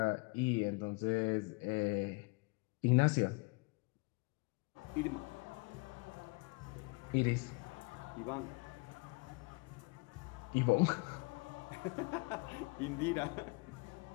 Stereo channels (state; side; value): quieter; right; 29.2 dB